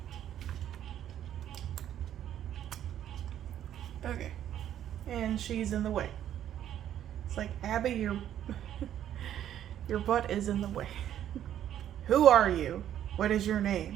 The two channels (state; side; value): quieter; left; 10.8 dB